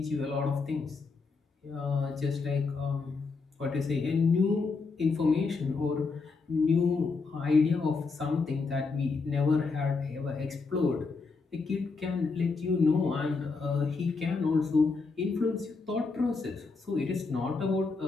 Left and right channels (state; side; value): quieter; right; 4.3 dB